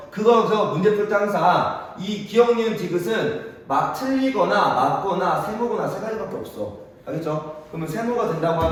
그거에서 문제 풀 때 항상 이 기억, 니은, 디귿은 막 틀리거나 맞거나 세모거나 세 가지밖에 없어. 알겠죠? 그러면 세모가 된다고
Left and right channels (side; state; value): both; identical; correlation 1.00